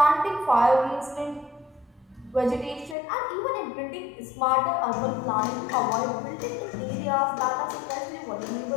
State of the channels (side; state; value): right; drops out; at 3.0 s